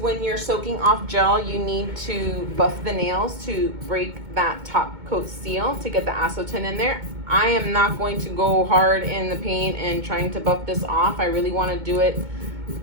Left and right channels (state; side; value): late; left; 2.2 ms